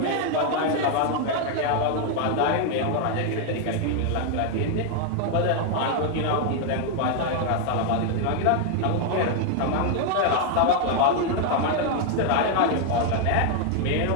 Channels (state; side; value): different; both; correlation 0.00